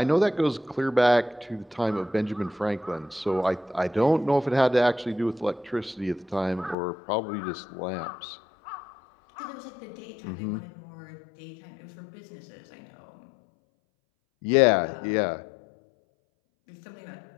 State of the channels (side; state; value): right; drops out; at 6.8 s